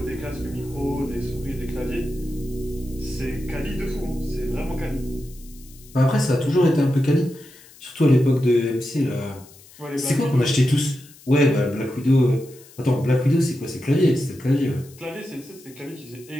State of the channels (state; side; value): noise; left; hiss, 23 dB below the sound